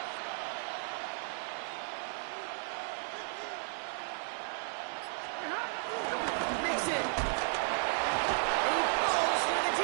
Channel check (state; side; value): silent; left; 55 dB below the other